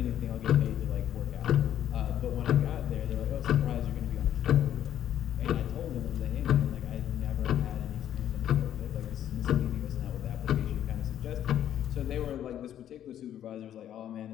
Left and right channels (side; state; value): right; quieter; 10.8 dB